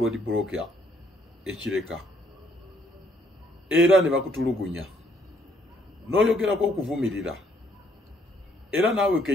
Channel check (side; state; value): both; normal; correlation 0.68